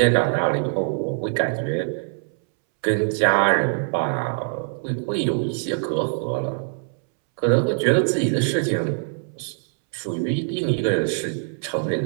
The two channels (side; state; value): left; silent; 63 dB below the other